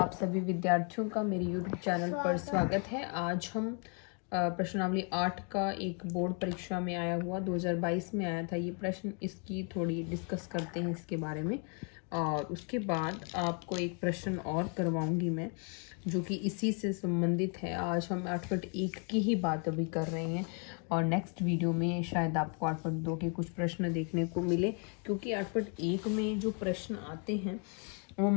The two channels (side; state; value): right; quieter; 38.3 dB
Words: सभी विद्यार्थियों का मेरे YouTube चैनल पर स्वागत है। आज हम प्रश्नावली 8 का एक बोर्ड परीक्षा में आया हुआ 2022 में आया था ये प्रश्न, इसकी थोड़ी डिस्कस करते हैं इसके बारे में। और उसके बाद आपको एक प्रश्न और करवाऊंगी मैं जो कि इसी से संबंधित है। आज हम 8.1 की ही बात अभी कर रहे हैं और नेक्स्ट वीडियो में शायद आपको 8.2 के कुछ प्रश्न देखने को मिले, क्योंकि 8.1 में जो प्रश्न आते हैं वो